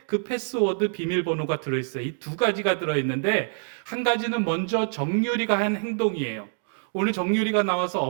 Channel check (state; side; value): silent; left; digital silence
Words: 그 패스워드 비밀번호가 들어있어요. 이 두 가지가 들어있는데, 한 가지는 먼저 정유리가 한 행동이에요. 오늘 정유리가 나와서